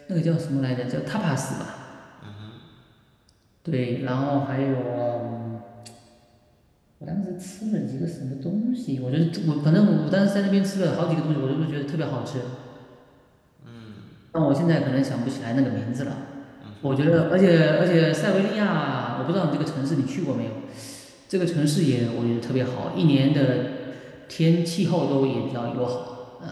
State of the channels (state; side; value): identical; both; correlation 1.00